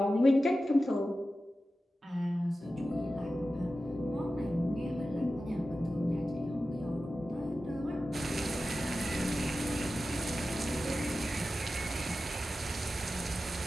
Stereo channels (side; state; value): both; normal; correlation 0.93